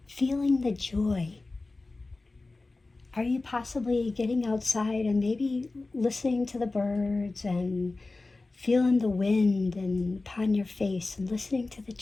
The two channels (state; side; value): quieter; right; 3.3 dB